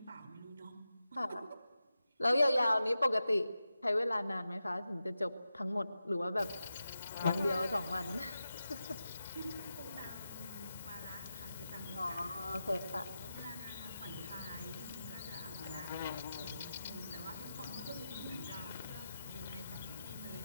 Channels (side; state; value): both; inverted; correlation -0.91